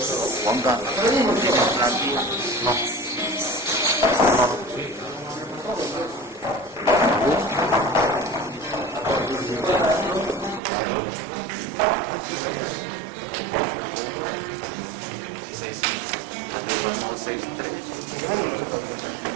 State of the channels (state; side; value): drops out; left; at 10.6 s